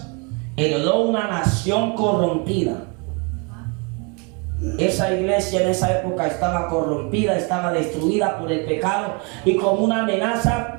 heredó una nación corrompida. Esa iglesia en esa época estaba corrompida, estaba destruida por el pecado, y como una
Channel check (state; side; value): quieter; left; 33.0 dB